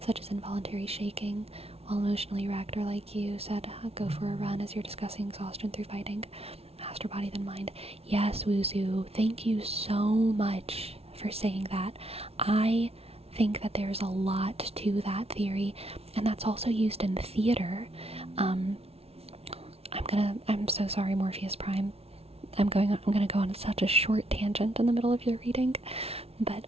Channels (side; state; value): left; late; 0.30 ms